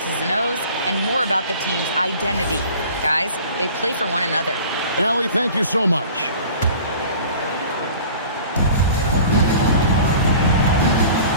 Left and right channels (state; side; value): inverted; both; correlation -0.45